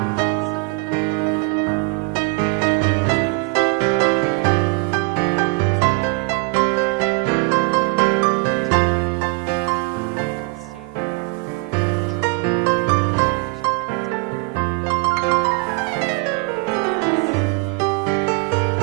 of Oyster Boy that a friend of mine in Los Angeles, Chris, pointed out to me, and there was no turning back for me. I just became consumed with drawing again, which I hadn't done for a very long time. Being in his house reminded me of being a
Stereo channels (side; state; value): left; quieter; 30.5 dB